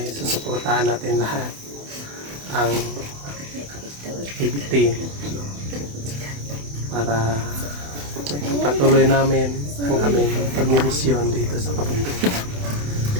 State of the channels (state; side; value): late; left; 28 ms